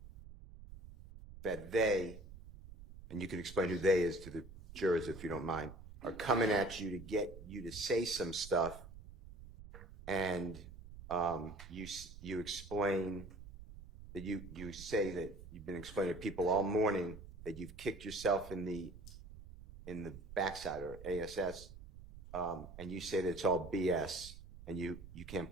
that they, and you can explain who they is to the jurors if you don't mind, are coming at you to get you to say some stuff, and you explain that you say that you've been explaining to people all morning that you've kicked yourself in the backside or ASS, and you say that it's all BS and you can't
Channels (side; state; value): right; noise; rumble, 15 dB below the sound